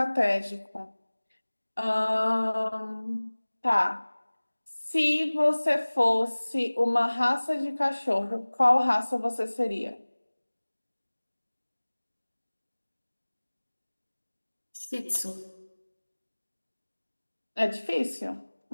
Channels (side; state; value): both; inverted; correlation -1.00